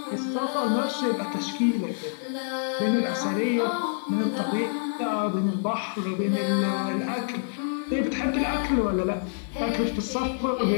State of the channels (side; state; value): right; silent; 58 dB below the other